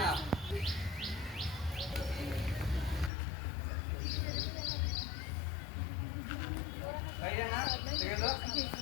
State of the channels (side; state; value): right; drops out; at 3.1 s